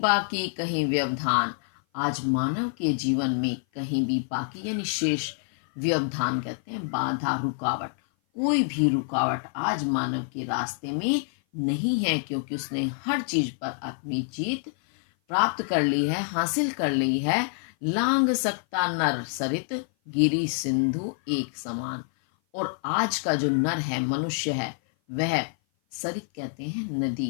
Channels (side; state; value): right; silent; 56 dB below the other